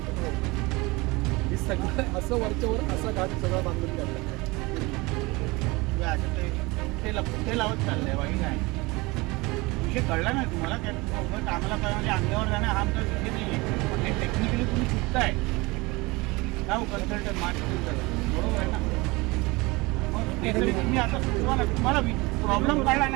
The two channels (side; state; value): left; quieter; 23.8 dB